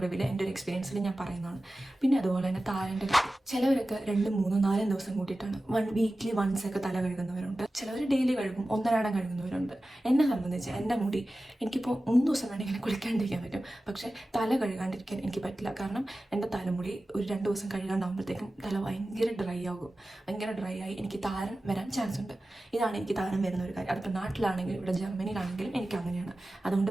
എൻ്റെ ഒരു എക്സ്പീരിയൻസിൽ ഞാൻ പറയുന്നതാണ്. പിന്നെ അതുപോലെ തന്നെ താരൻ്റെ ചിലവരൊക്കെ 2, 3, 4 ദിവസം കൂട്ടിയിട്ടാണ് വീക്ക്ലി വൺസ് ഒക്കെ തല കഴുകുന്നവരുണ്ട്. ചിലവർ ഡെയിലി കഴുകും, ഒന്നരാടം കഴുകുന്നവരുണ്ട്. എന്നെ സംബന്ധിച്ച് എൻ്റെ മുടി എനിക്കിപ്പോൾ 3 ദിവസം വേണമെങ്കിൽ കുളിക്കാണ്ടിരിക്കാൻ പറ്റും, പക്ഷേ തല കഴുകാണ്ടിരിക്കാൻ എനിക്ക് പറ്റില്ല. കാരണം എൻ്റെ തലമുടി ഒരു 2 ദിവസം കഴുകാണ്ടാകുമ്പോഴത്തേക്കും തല ഭയങ്കര ഡ്രൈ ആകും. ഭയങ്കര ഡ്രൈ ആയി എനിക്ക് താരൻ വരാൻ ചാൻസ് ഉണ്ട്. ഇതാണ് എനിക്ക് താരൻ വരുന്ന ഒരു കാര്യം. അതിപ്പോൾ നാട്ടിലാണെങ്കിലും ഇവിടെ ജർമ്മനിയിലാണെങ്കിലും എനിക്ക് അങ്ങനെയാണ്. അതുകൊണ്ട്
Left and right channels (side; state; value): both; normal; correlation 0.95